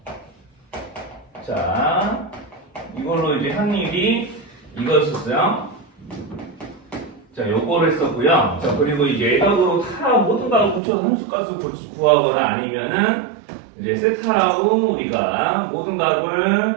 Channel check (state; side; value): drops out; left; at 10.8 s